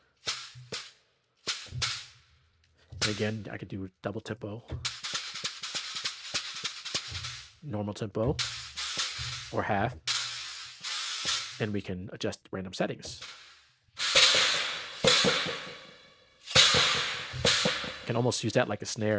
And again, I could do double tempo, normal tempo, or half, and we can adjust random settings. Can almost use that like a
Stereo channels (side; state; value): both; identical; correlation 1.00